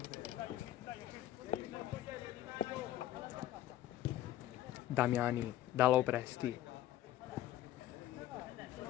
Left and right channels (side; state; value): right; quieter; 13.5 dB